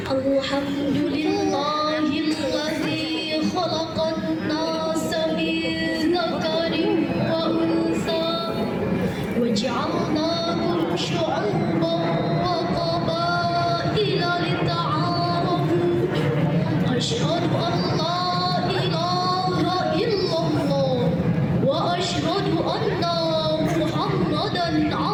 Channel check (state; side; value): identical; both; correlation 1.00